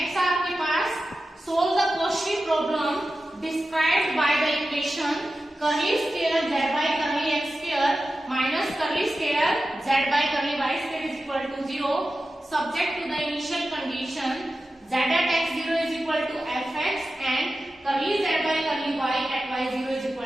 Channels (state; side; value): normal; both; correlation 0.93